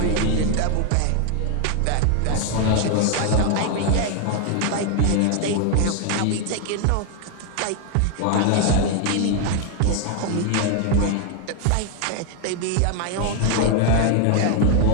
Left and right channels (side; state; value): both; different; correlation 0.01